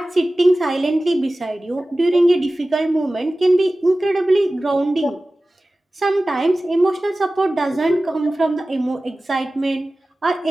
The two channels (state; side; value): normal; both; correlation 0.96